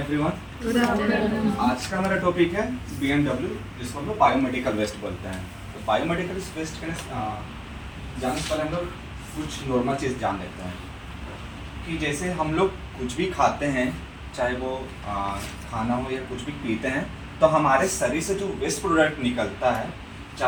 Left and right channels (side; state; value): both; identical; correlation 1.00